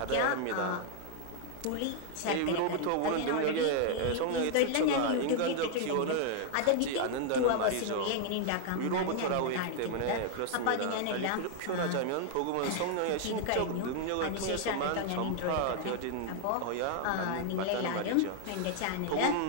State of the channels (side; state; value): both; different; correlation 0.00